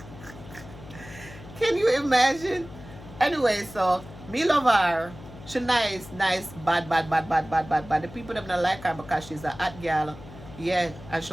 Can you imagine? Anyway, so me love her. She nice, bad. The people them not like her because she's a hot girl. Yeah, and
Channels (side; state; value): left; noise; hum, 16 dB below the sound